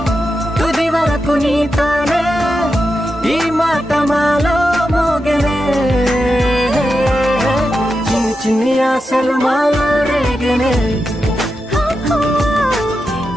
తుది వరకు నీతోనే ఈ మాట మాలో మోగెనే చిన్ని చిన్ని ఆశలు మాలో రేగెనే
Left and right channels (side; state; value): both; normal; correlation 0.88